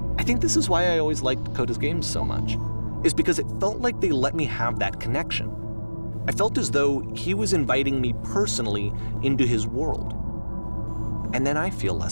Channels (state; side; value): inverted; both; correlation -1.00